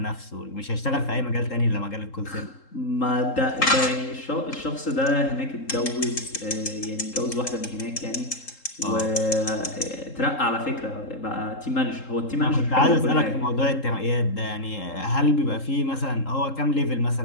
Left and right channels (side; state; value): right; late; 3.7 ms